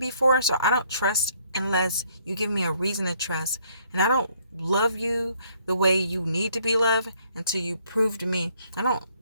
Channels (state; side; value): inverted; both; correlation -0.66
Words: so I don't trust unless you give me a reason to trust. And I don't love you the way you need to be loved until you prove to me. I don't